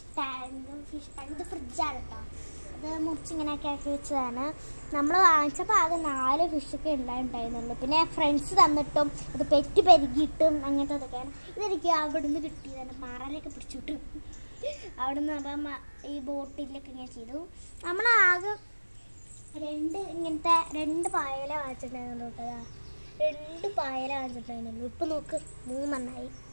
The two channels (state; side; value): inverted; both; correlation -1.00